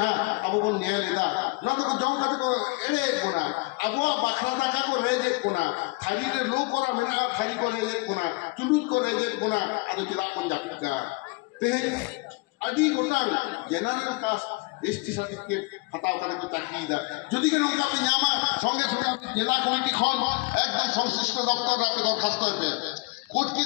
अब वो न्याय लेदा ना तो जाऊं कते को एले कोना अब वो बखरा दाका को रेजे कोना थारी रे लो कोरा मेना थारी को रेजे कोना चुलुत को रेजे कोना आदो किदा कोन जापिका ते আদি গোটাং জেনারেল কাস্ট এসটি সার্টিফিকেট হাতাও করে তো চাকরি দা যদি কেন ওকা আপনি জামা সঙ্গে সঙ্গে আপনি জেলা কমিটি খন একদম সংশ্লিষ্ট দপ্তরে আপনি দরখাস্ত হবে কোর্ট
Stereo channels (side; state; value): right; quieter; 26.9 dB